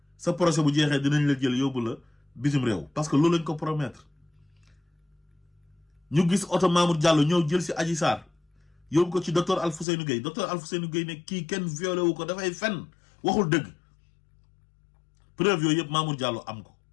sa procès bu jeexee dinañ la jël yóbbu la bitim réew parce que loolu lañ ko promettre ñu gis oto Mamour Diallo ñëw jël si Adji Sarr yóbbu ko ci docteur Alfousseynou Gueye ne kii kenn violé wu ko dafay fen waxul dëgg preuve yooyu yëpp Mamour Diallo am ko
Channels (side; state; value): right; drops out; at 9.9 s